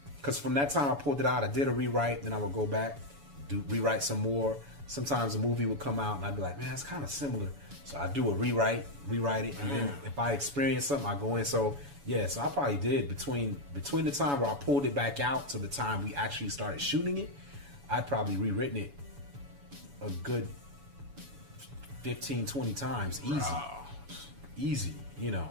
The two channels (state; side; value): late; left; 7.1 ms